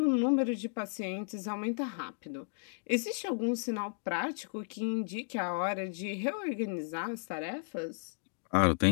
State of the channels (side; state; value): right; silent; digital silence